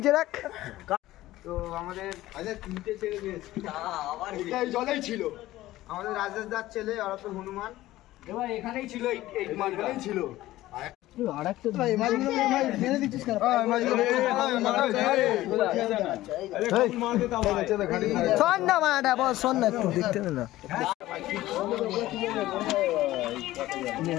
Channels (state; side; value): quieter; right; 16.1 dB